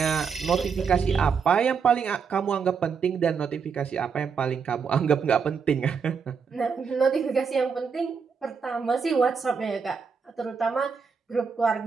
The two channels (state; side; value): quieter; left; 6.0 dB